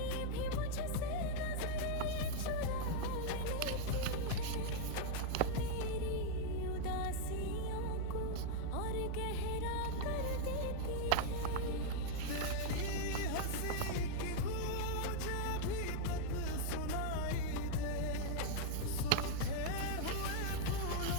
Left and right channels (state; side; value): different; both; correlation 0.00